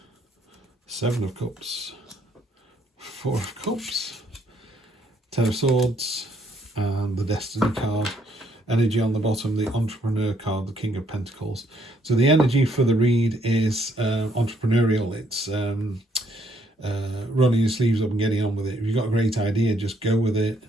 7 of Cups, 4 of Cups, 10 of Swords, and the Destiny card. Energy on the bottom, the Entrepreneur card, the King of Pentacles. So the energy for the read is entrepreneurial. It's rolling your sleeves up and getting on with it. If you've got a great idea, just go with it.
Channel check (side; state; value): both; normal; correlation 0.69